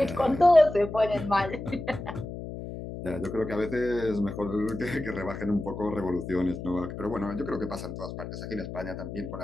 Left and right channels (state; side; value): noise; left; hum, 8 dB below the sound